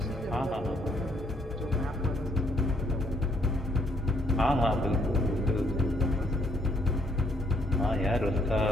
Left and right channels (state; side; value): normal; both; correlation 0.70